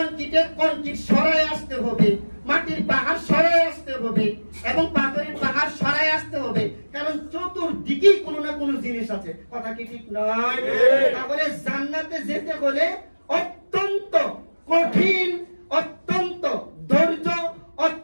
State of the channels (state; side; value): inverted; both; correlation -1.00